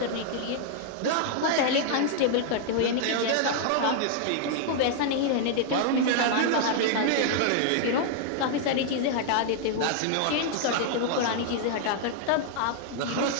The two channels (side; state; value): both; different; correlation -0.01